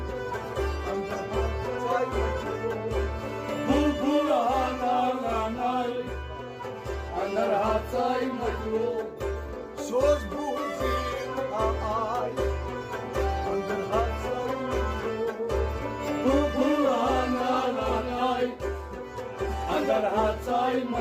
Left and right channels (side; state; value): both; identical; correlation 1.00